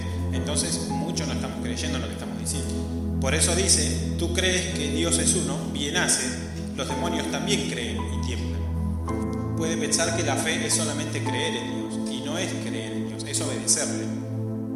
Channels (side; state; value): both; identical; correlation 1.00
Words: entonces mucho no estamos creyendo en lo que estamos diciendo. Por eso dice, tú crees que Dios es uno, bien haces, los demonios también creen y tiemblan. Puede pensar que la fe es solamente creer en Dios, y no es creer en Dios, es obedecerle.